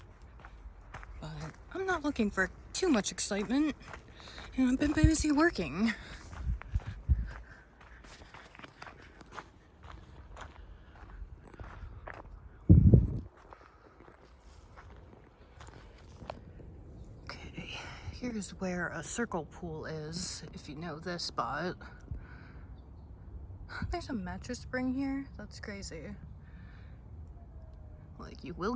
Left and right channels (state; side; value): identical; both; correlation 1.00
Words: but I'm not looking for too much excitement, and I've been busy working. Okay, here's where a circle pool is, if you know this spot. There's a mattress spring here? That's crazy. Like, you